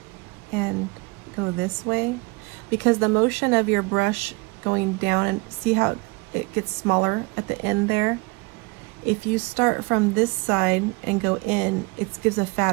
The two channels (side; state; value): left; quieter; 27.9 dB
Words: and go this way, because the motion of your brush going down, and see how it gets smaller at the end there? If you start from this side and go in, it gives a